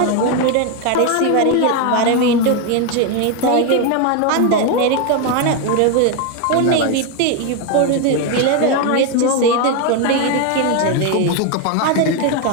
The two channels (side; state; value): both; different; correlation 0.02